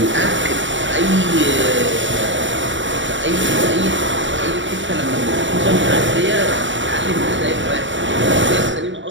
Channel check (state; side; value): late; left; 0.55 ms